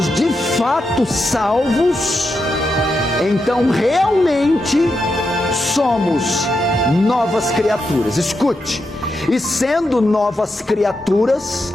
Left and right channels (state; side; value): normal; both; correlation 0.85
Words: de fato salvos, então realmente somos novas criaturas. Escute, e sendo novas criaturas,